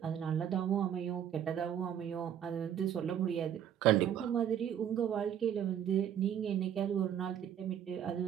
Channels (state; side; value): quieter; left; 9.6 dB